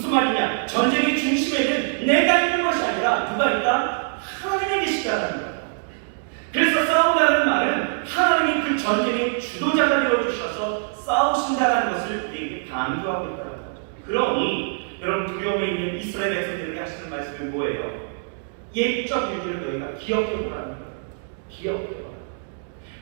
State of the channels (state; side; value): silent; left; digital silence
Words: 말이냐? 전쟁의 중심에는 내가 있는 것이 아니라 누가 있다? 하나님이 계시다는 거예요. 그래서 싸운다는 말은 하나님이 그 전쟁의 주도자가 되어주셔서 싸우신다는 것을 우리에게 강조하고 있다는 거죠. 그러니 여러분, 두려움에 있는 이스라엘 백성들에게 하시는 말씀은 뭐예요? 옛적 일들을 너희가 기억해보라는 거예요. 기억해보라.